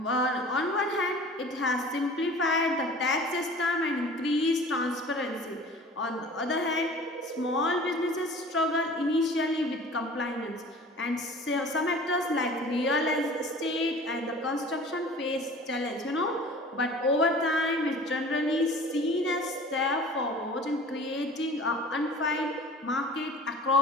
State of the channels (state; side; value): normal; both; correlation 0.44